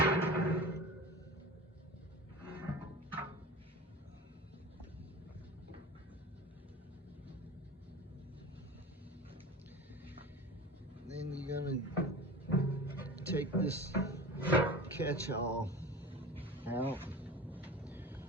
Then you're gonna take this catch-all out.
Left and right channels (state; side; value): normal; both; correlation 0.34